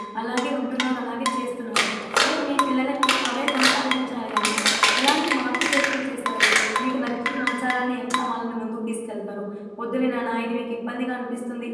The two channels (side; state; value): both; identical; correlation 1.00